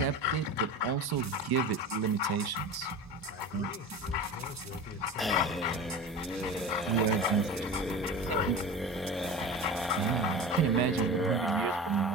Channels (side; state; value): both; normal; correlation 0.31